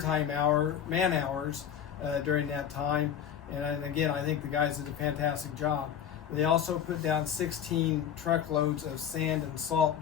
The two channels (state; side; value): quieter; right; 9.0 dB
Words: man hours during that time, and again, I think the guys did a fantastic job. They also put down 16 truckloads of sand and salt